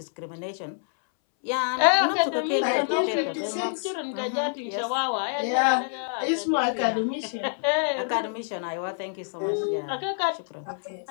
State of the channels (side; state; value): right; silent; 60 dB below the other